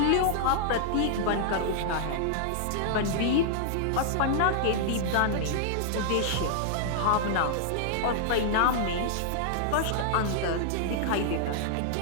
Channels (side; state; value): both; different; correlation -0.01